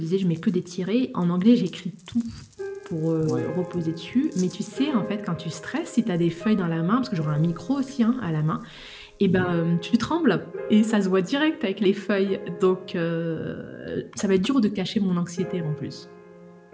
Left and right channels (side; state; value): both; identical; correlation 1.00